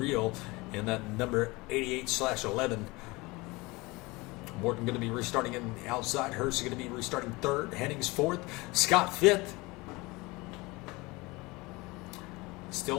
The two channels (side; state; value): right; quieter; 23.4 dB